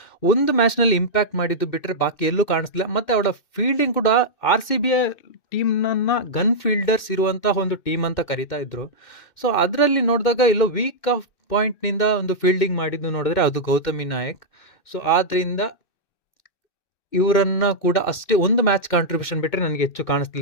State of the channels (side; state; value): right; late; 2.6 ms